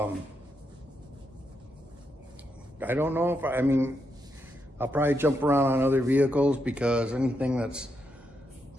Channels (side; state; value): both; normal; correlation 0.82